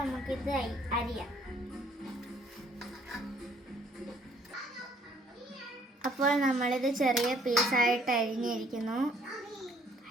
അരിയാം. അപ്പോൾ നമ്മളിത് ചെറിയ പീസായിട്ട് അരിഞ്ഞിരിക്കുന്നു.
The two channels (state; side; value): normal; both; correlation 0.62